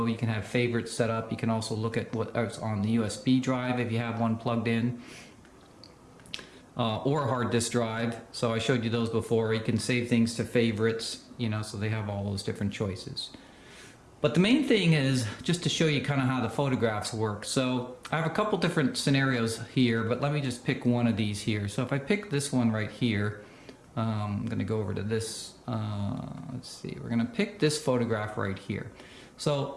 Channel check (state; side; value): identical; both; correlation 1.00